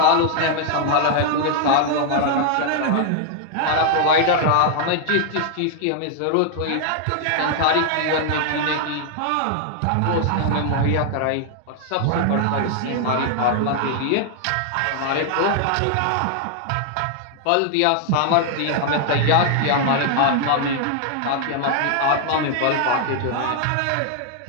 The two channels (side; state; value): both; different; correlation 0.00